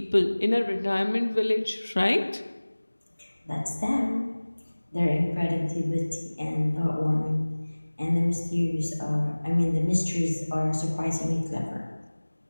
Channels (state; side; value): inverted; both; correlation -1.00